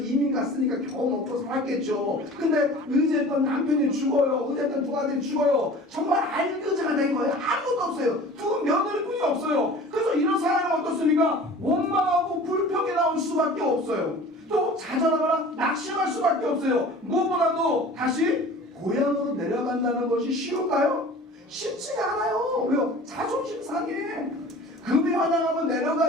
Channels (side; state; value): both; normal; correlation 0.43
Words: 갔으니까 겨우 먹고 살겠죠. 근데 의지했던 남편이 죽어요. 의지했던 두 아들이 죽어요. 정말 알거지가 된 거예요. 아무것도 없어요. 두 며느리뿐이 없어요. 그래서 이런 상황이 어떻습니까? 원망하고 불평이 나올 수밖에 없어요. 또 좌절하거나 낙심할 수밖에 없어요. 무엇보다도 다시 고향으로 내려간 만나는 것이 쉬울까요? 쉽지가 않아요. 왜요? 자존심 상해. 금이 환영하면